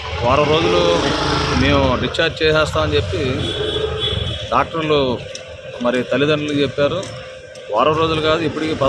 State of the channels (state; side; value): identical; both; correlation 1.00